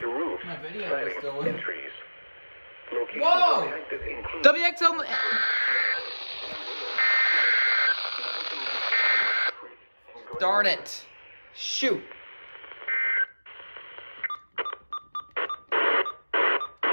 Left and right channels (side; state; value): both; inverted; correlation -1.00